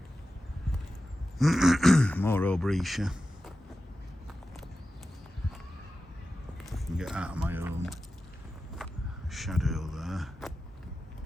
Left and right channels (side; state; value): both; normal; correlation 0.93